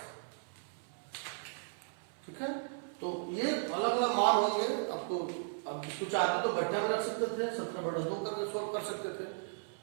ठीक है, तो ये अलग अलग मान होंगे आपको। अब इसको चाहते तो बट्टा में रख सकते थे, 17/2 करके सोल्व कर सकते थे।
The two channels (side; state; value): left; silent; 54 dB below the other